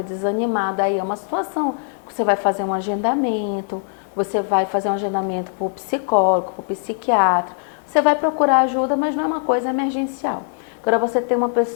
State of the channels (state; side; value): silent; right; 58 dB below the other